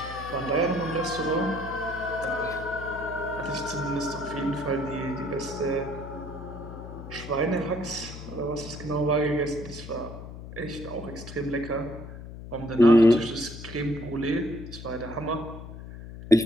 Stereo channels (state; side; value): noise; left; hum, 12 dB below the sound